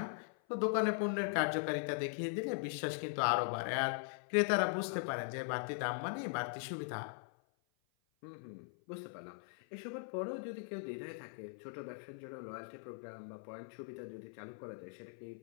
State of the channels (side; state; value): right; silent; 51 dB below the other